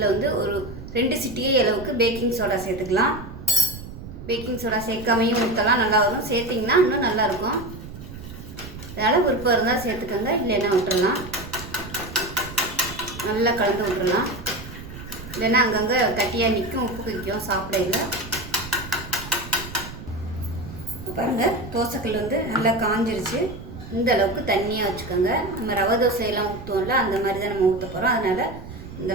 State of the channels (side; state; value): right; noise; rumble, 12 dB below the sound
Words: வந்து ஒரு 2 சிட்டிகை அளவுக்கு பேக்கிங் சோடா சேர்த்துக்கலாம். பேக்கிங் சோடா சேர்க்காமையும் ஊற்றலாம், நல்லா வரும். சேர்த்திங்கன்னா இன்னும் நல்லாயிருக்கும். அதனால் விருப்பம் இருந்தால் சேர்த்துக்கோங்க, இல்லைன்னா விட்டுறலாம். நல்லா கலந்து விட்டுறலாம், இல்லைன்னா அங்கங்கே கட்டியாக நிற்கும், உப்பு வைக்கும் சாப்பிடையில. பாருங்கள், தோசைக்கல் வந்து நல்லா காஞ்சிருச்சு. இந்த அளவுக்கு தண்ணியாக வச்சுக்கோங்க. நம்ம ரவை தோசையெல்லாம் ஊற்றுவோம்ல, அந்த மாதிரி தான் நம்ம ஊற்ற போகிறோம். அதனால் இந்த